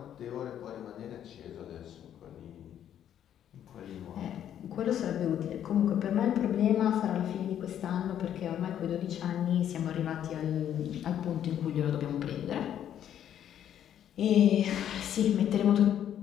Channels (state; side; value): quieter; right; 10.2 dB